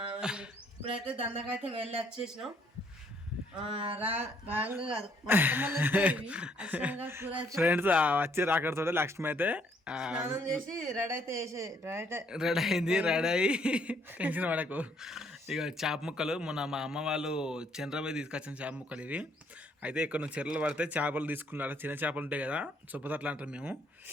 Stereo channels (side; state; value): both; normal; correlation 0.67